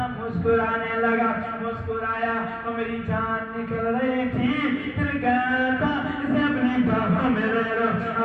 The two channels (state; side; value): identical; both; correlation 1.00